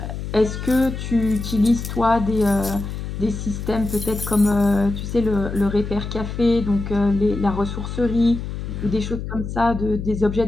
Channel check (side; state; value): left; noise; hum, 6 dB below the sound